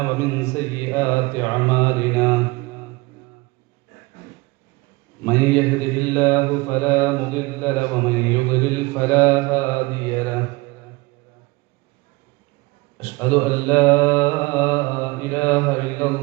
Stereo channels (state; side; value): quieter; left; 23.5 dB